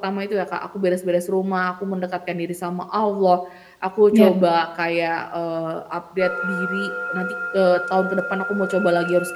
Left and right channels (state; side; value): identical; both; correlation 1.00